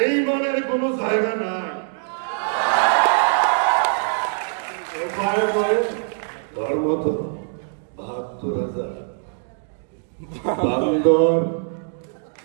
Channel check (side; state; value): left; silent; digital silence